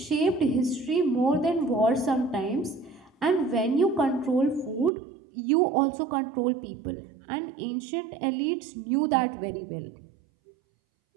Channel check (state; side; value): drops out; left; at 4.9 s